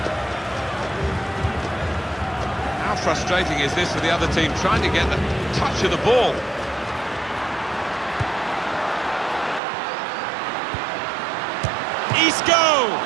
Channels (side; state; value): left; drops out; at 9.6 s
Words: How frustrating is this for the other team, trying to get the touch of the ball? Isco!